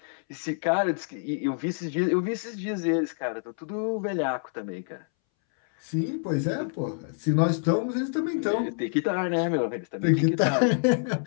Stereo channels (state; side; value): silent; right; 60 dB below the other